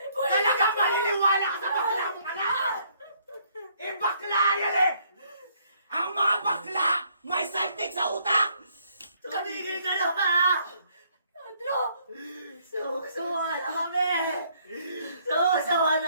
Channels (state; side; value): inverted; both; correlation -0.67